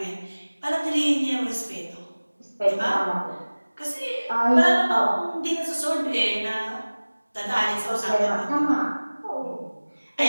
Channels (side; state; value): both; inverted; correlation -1.00